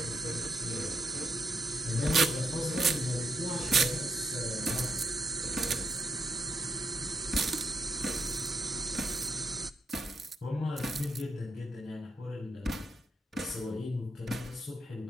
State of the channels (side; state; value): both; normal; correlation 0.79